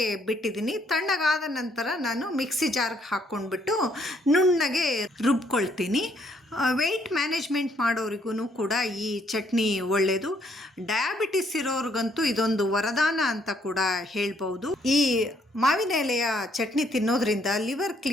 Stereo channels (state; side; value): normal; both; correlation 0.69